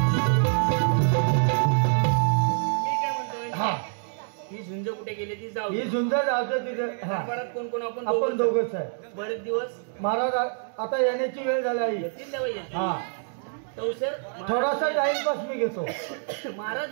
ही झुंज जातो तिथे. कोण कोण आपण दोघच आहे. बरेच दिवस महाराज आता येण्याची वेळ झाली आहे. थोडासा टाइमपास मी घेतो. महाराज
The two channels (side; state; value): left; silent; digital silence